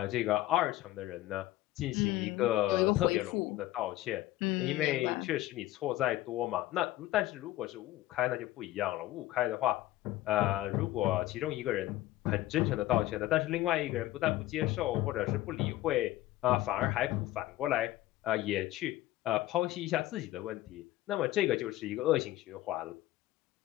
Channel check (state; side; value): quieter; right; 15.8 dB